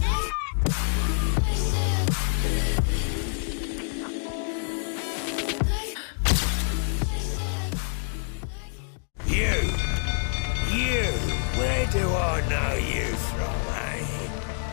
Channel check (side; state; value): right; silent; 60 dB below the other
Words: where do I know you from, eh?